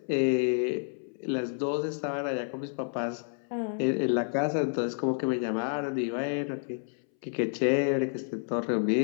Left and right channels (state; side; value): silent; right; 58 dB below the other